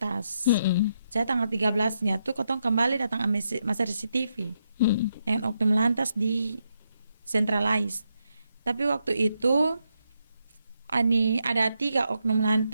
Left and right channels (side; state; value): both; inverted; correlation -0.81